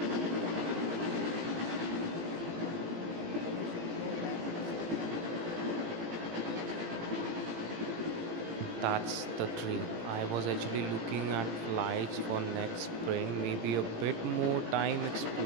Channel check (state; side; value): late; left; 18 ms